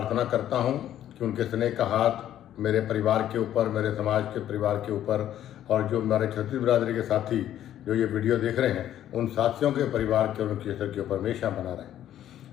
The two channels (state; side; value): quieter; right; 11.6 dB